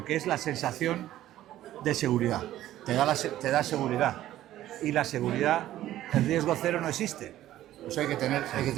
que es la sensación de seguridad. Te da seguridad. Y la seguridad, el riesgo cero no existe. Eso hay que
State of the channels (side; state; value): left; quieter; 13.6 dB